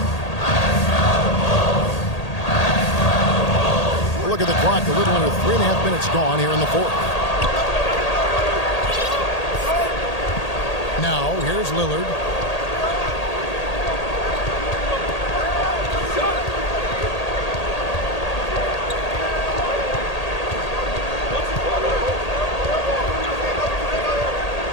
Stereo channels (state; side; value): late; right; 1.8 ms